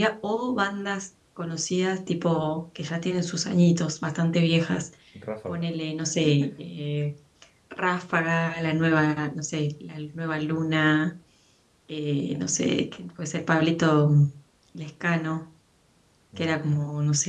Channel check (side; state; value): both; identical; correlation 1.00